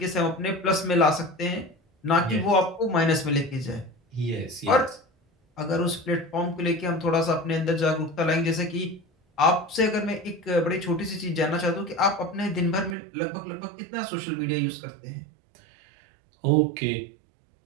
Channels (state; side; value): drops out; left; at 13.0 s